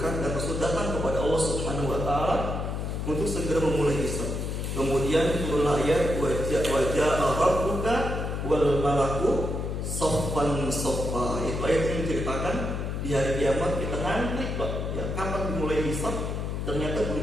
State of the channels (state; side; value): noise; left; hum, 3 dB below the sound